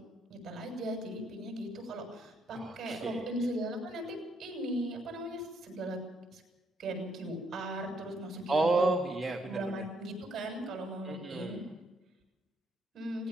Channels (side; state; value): both; normal; correlation 0.73